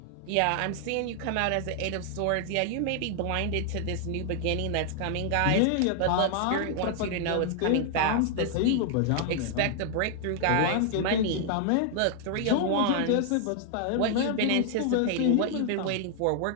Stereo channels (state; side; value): different; both; correlation 0.00